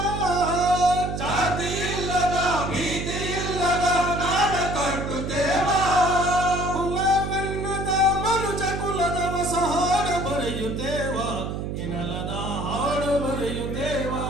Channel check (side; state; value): right; noise; hum, 4 dB below the sound